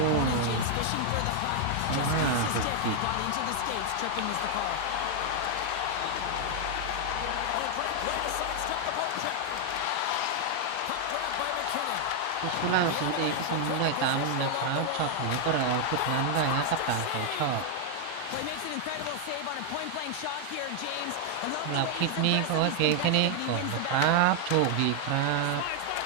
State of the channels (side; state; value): both; different; correlation 0.00